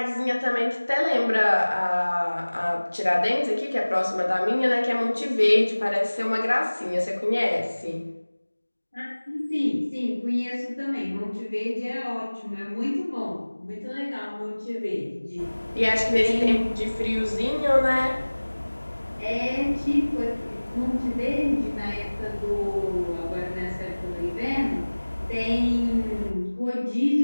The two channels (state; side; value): inverted; both; correlation -1.00